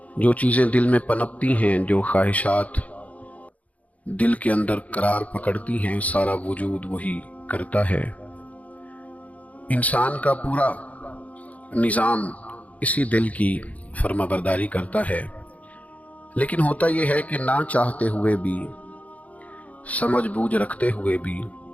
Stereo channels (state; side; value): late; right; 0.069 ms